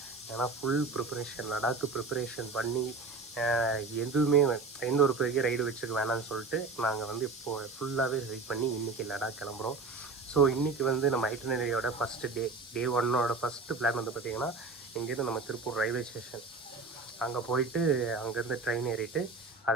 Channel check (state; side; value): quieter; left; 3.9 dB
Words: ஏன்னா ஃபுல் ப்ரிப்பரேஷன், லடாக்கு ப்ரிப்பரேஷன் பண்ணி எதுவுமே எந்த ஒரு பெரிய ரைடு வச்சுக்க வேணாம்னு சொல்லிட்டு நாங்கள் வந்து இப்போது ஃபுல்லாகவே ரைட் பண்ணி இன்றைக்கி லடாக் கிளம்புறோம். ஸோ இன்றைக்கி வந்து நம்ம ஐட்டனரியோட ஃபஸ்ட்டு டே 1ஓட ஃபஸ்ட்டு பிளான் வந்து பார்த்திங்கன்னா இங்கேருந்து நம்ம திருப்பூர் ரயில்வே ஸ்டேஷன் அங்கே போயிட்டு அங்கேருந்து ட்ரெயின் ஏறிட்டு